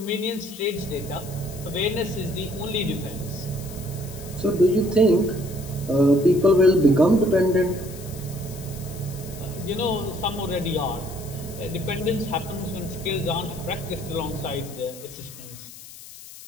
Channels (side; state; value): left; noise; hiss, 16 dB below the sound